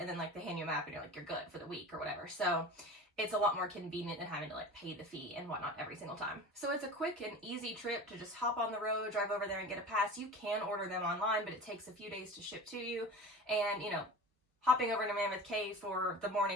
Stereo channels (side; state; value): both; normal; correlation 0.35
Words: then like they hand you a map and you're like, you're good for the week or whatever. So it's a lot more convenient than having to like pay the fee and whatnot every single time. So it's a quick and easy trip to just hop on the road, drive over there and get a pass. You can order them online, but it takes a few days to ship to you. And hopping over to Mammoth Cave for the